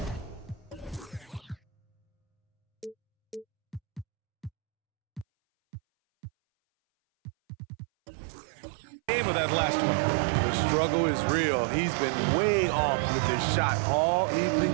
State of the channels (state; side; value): drops out; left; at 5.2 s